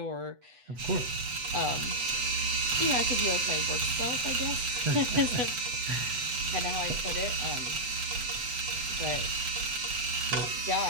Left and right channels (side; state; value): left; late; 8.1 ms